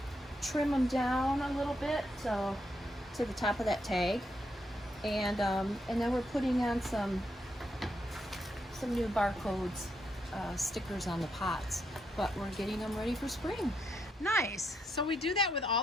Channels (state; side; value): normal; both; correlation 0.79